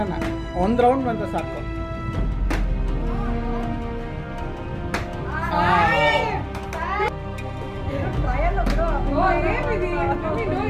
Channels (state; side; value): identical; both; correlation 1.00